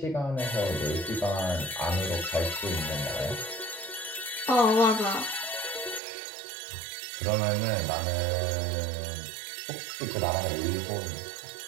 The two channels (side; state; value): left; drops out; at 6.0 s